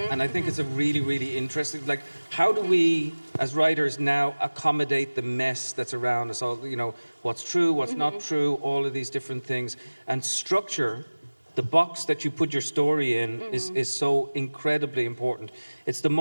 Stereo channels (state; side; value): inverted; both; correlation -1.00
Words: I think it's a really, really interesting, like, how do we, as writers now, accommodate the mess that's around us? All, what's true, what's not true, all of these different things. And structure, the box that you put your story in, is so incredibly important. It's the